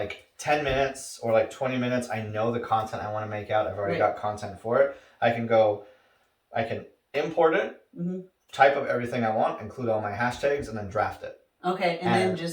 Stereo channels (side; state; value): both; identical; correlation 1.00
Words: 10 minutes or like 20 minutes, I know the content I want to make out. I've already got content for it. I can import it, type up everything I want, include all my hashtags, and then draft it. Okay, and then